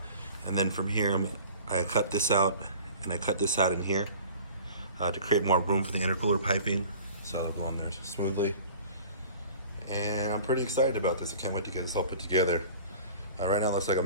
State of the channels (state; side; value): inverted; both; correlation -0.44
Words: And then from here, I cut this out and I cut this out in here to create more room for the intercooler piping. So it'll go in there smoothly. And I'm pretty excited about this. I can't wait to get this all put together. Right now it looks like a